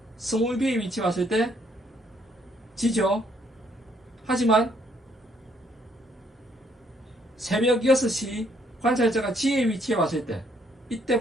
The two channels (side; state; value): both; normal; correlation 0.68